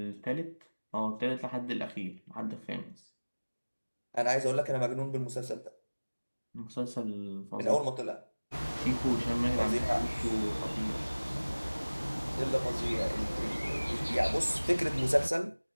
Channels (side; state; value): both; inverted; correlation -1.00